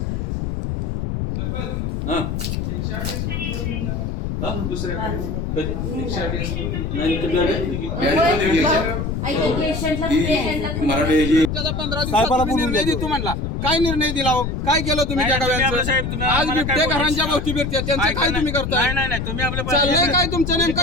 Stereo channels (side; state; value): left; noise; rumble, 2 dB below the sound